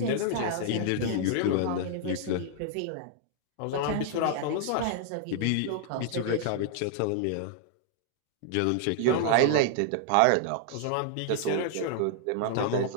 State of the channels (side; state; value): both; different; correlation -0.01